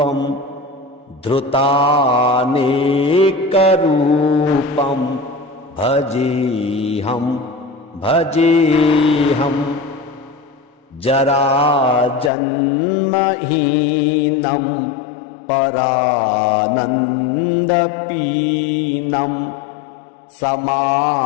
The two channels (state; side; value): drops out; right; at 12.3 s